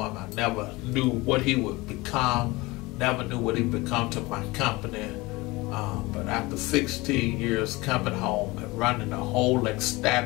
him. I never knew what he would become. Never knew what he'd become to my company. But after 16 years coming home and running a whole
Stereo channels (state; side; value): quieter; right; 22.3 dB